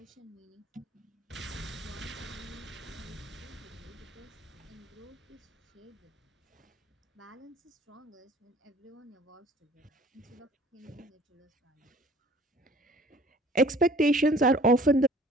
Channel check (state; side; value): normal; both; correlation 0.52